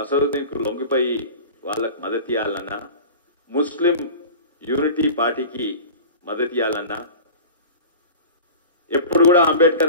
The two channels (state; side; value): inverted; both; correlation -0.36